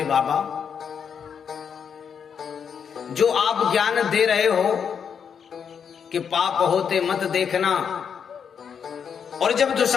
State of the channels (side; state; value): right; quieter; 7.2 dB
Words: बाबा जो आप ज्ञान दे रहे हो कि पाप होते मत देखना, और जब